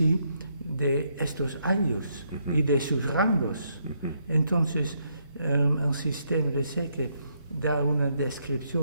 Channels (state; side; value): inverted; both; correlation -0.75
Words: de estos ayllus y de sus rangos. Entonces, el sistema de Seque da una